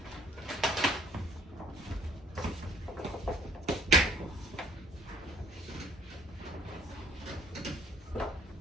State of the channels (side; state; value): both; normal; correlation 0.58